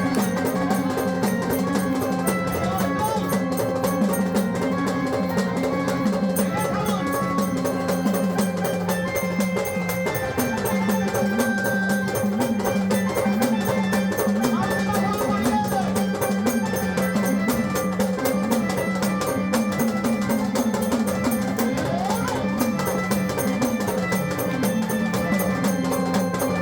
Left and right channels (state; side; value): identical; both; correlation 1.00